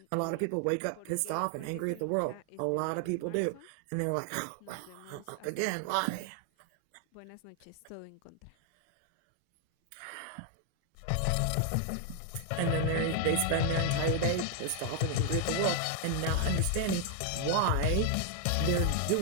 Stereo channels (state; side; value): different; both; correlation 0.00